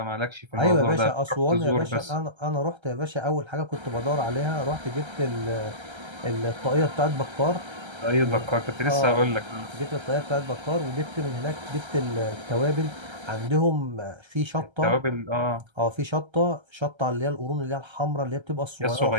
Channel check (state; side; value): late; left; 1.3 ms